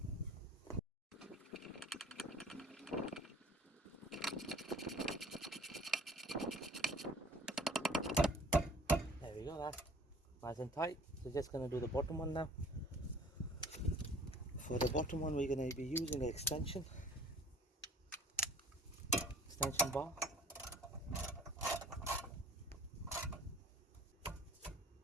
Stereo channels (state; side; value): normal; both; correlation 0.50